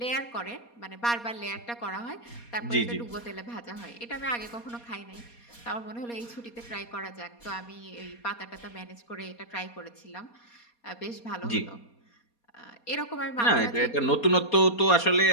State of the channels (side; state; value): right; late; 4.2 ms